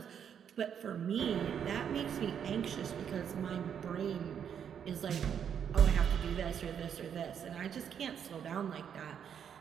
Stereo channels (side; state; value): left; quieter; 8.2 dB